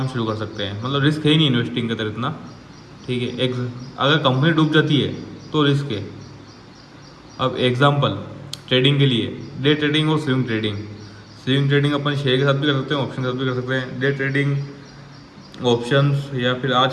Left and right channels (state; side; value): identical; both; correlation 1.00